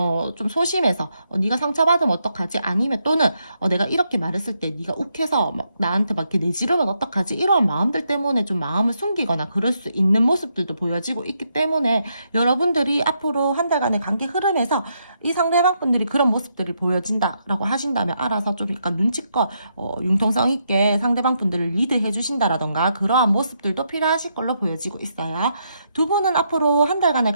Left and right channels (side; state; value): both; inverted; correlation -0.79